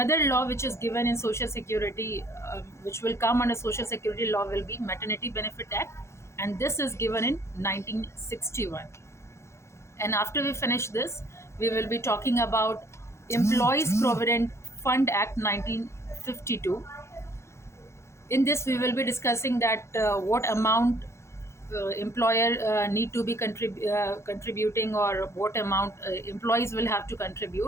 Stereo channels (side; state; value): right; late; 0.13 ms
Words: law which is given in social security, which will come under social security law, will be Maternity Benefit Act, and this is given in 1961. And after we finish this, we will be talking about Employees Provident Fund Act 1952. In this we will be discussing that what amount employer need to be contributing, or what amount employees will have to